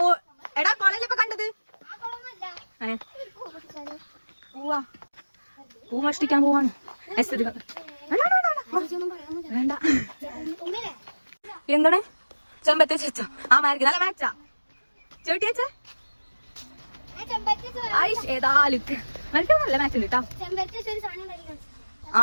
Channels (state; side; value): inverted; both; correlation -1.00